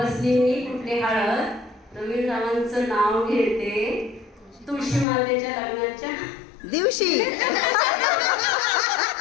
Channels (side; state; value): right; drops out; at 5.1 s